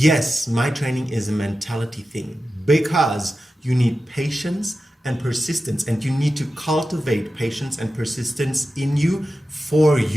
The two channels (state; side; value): normal; both; correlation 0.93